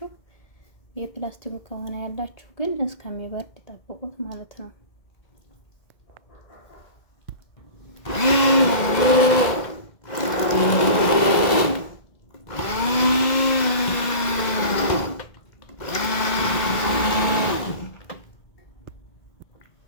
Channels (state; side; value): late; right; 1.9 ms